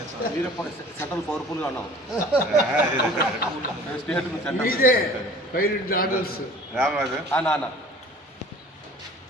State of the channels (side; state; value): both; normal; correlation 0.46